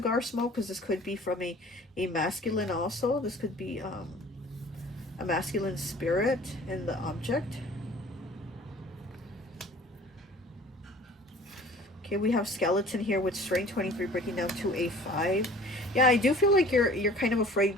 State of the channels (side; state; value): both; normal; correlation 0.48